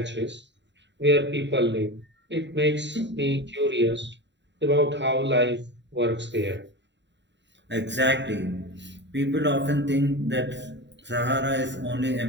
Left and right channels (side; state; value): left; late; 0.52 ms